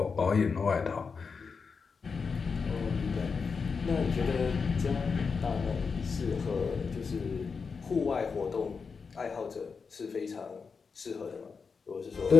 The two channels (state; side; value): quieter; right; 5.3 dB